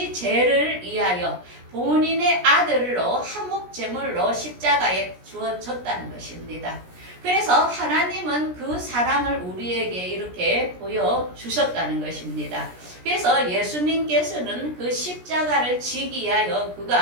죄를 위하여 본인의 아들로 화목제물로 십자가에 주어졌다는 것입니다. 그래서 하나님은 그 사랑을 우리에게 이렇게 보여주셨다는 것입니다. 그래서 예수님께서는 그 십자가를 지기 위하여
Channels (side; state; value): left; late; 17 ms